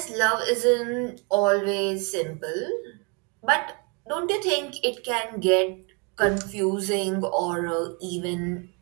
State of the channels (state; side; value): quieter; left; 31.8 dB